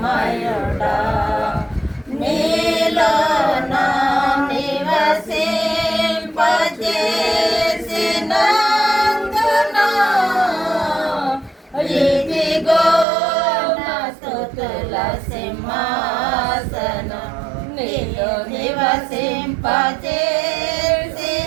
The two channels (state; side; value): drops out; left; at 13.1 s